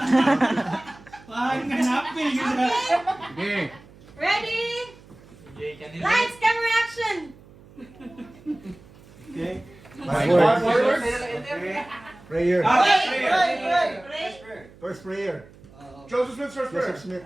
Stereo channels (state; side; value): noise; right; hum, 23 dB below the sound